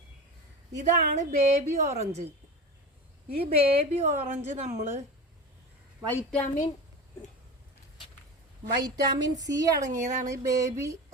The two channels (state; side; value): normal; both; correlation 0.28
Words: ഇതാണ് ബേബി ഓറഞ്ച്. ഈ ബേബി ഓറഞ്ച് നമ്മൾ വൈറ്റാമിൻ സി അടങ്ങിയതാണ് ഈ ബേബി